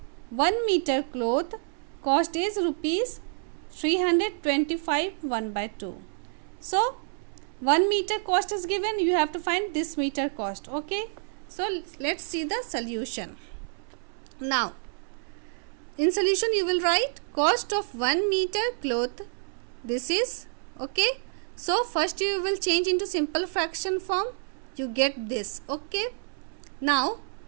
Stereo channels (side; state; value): left; silent; 59 dB below the other